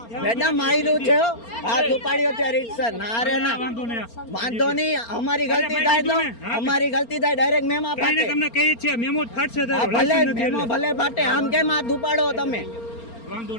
મેડમ માર્યું છે, હાથ ઉપાડ્યો છે રીતસર. ના રે ના, વાંધો નહીં. અમારી ગલતી થાય તો અમારી ગલતી થાય ડાયરેક્ટ મેમો ફાટે. તમને કહી છે મેમો ફાટશે. ભલે મેમો ભલે ફાટે, આમ કેમ હાથ ઉપાડો તમે? વાંધો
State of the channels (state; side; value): late; right; 4.3 ms